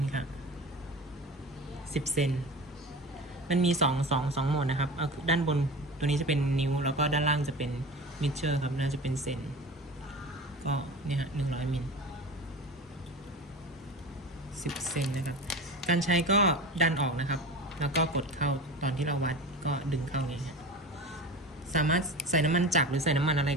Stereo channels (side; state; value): both; normal; correlation 0.32